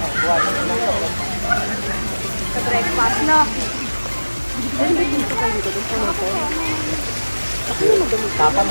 Sa breakfast, no? Tapang.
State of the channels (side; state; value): both; inverted; correlation -1.00